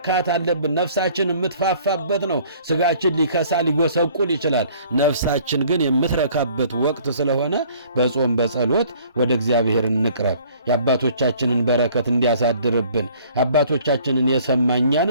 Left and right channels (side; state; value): both; inverted; correlation -0.55